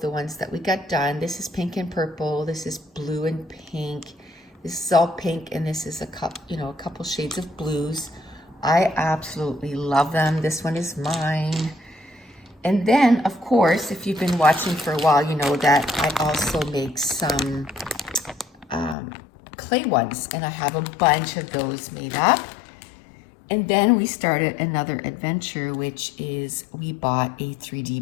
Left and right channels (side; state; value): right; drops out; at 18.9 s